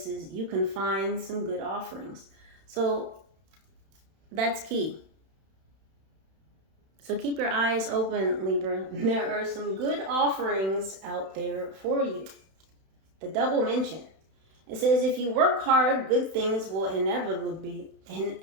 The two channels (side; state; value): left; late; 31 ms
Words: you can find some good offerings. So that's key. So keep your eyes open, Libra. There are some good offerings out there for you. The double mention. It says, if you work hard, good things will inevitably